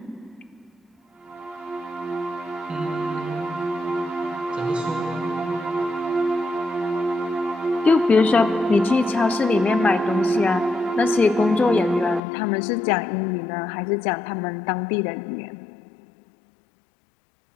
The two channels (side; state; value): right; drops out; at 12.2 s